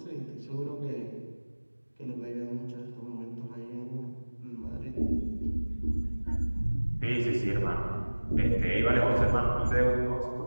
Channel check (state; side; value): inverted; both; correlation -1.00